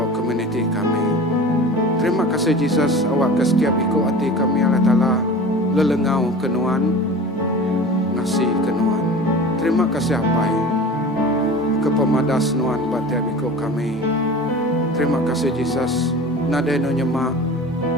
community kami. Terima kasih Yesus awak ke setiap ikut hati kami Allah Ta'ala lelengau kenuan ngasih kenuan. Terima kasih apai ke pemadas nuan batiap ikut kami. Terima kasih Yesus nadeno nyemak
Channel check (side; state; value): both; normal; correlation 0.37